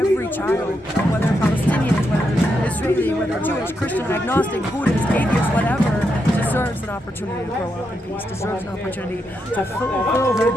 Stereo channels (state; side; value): normal; both; correlation 0.82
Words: child, whether Palestinian, whether Israeli, whether Jewish, Christian, agnostic, Buddhist, atheist, whatever, deserves an opportunity to grow up in peace, deserves an opportunity to fulfill their